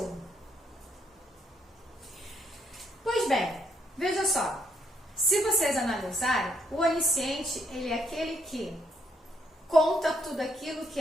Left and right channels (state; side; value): normal; both; correlation 0.73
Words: Pois bem, veja só, se vocês analisarem, o onisciente, ele é aquele que conta tudo aquilo que